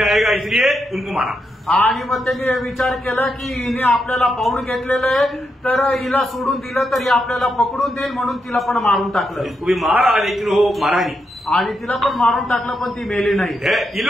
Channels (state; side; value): normal; both; correlation 0.83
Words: आएगा इसलिए उनको मारा. आणि मग त्यांनी विचार केला की हिने आपल्याला पाहून घेतलेलं आहे, तर हिला सोडून दिलं तर ही आपल्याला पकडून देईल, म्हणून तिला पण मारून टाकलं. इसको भी मारा लेकिन वो मारा नहीं. आणि तिला पण मारून टाकलं, पण ती मेली नाही. ये